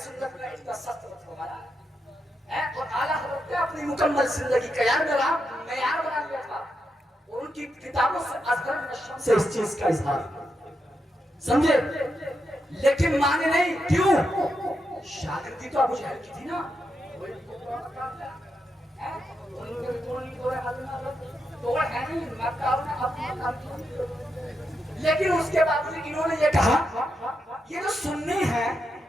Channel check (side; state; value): both; normal; correlation 0.84